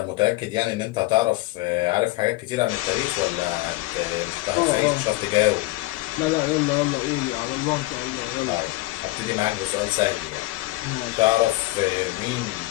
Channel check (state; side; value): quieter; right; 20.0 dB